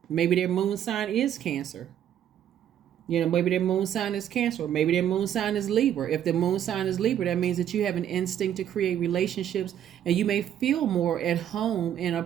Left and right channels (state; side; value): quieter; left; 10.3 dB